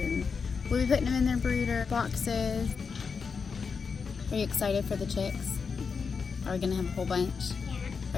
we'll be putting them in their brooder boxes. Are you excited for the chicks? Are we gonna have a whole bunch? Yeah.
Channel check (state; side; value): quieter; right; 5.5 dB